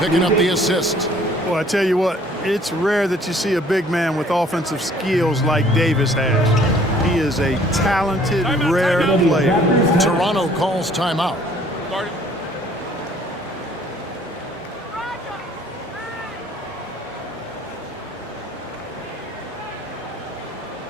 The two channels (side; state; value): both; normal; correlation 0.57